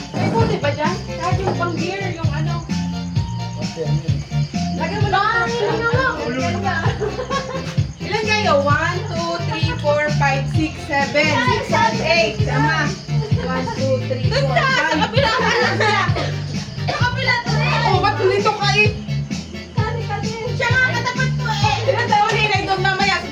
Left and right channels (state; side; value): identical; both; correlation 1.00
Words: May boat ba dyan? Kahit yung pang beer, yung ano. Lagyan mo lang. Ilan kayo? 1, 2, 3, 4, 5, 6, 7, 8. Tama. 1, 2, 3, 4, 5. Sa kapila ka lang siya. Sa kapila to eh. Oh, ba't dito ka eh? Siya nga katapat ko eh. Ilan taon eh? Inaidong mamaya sa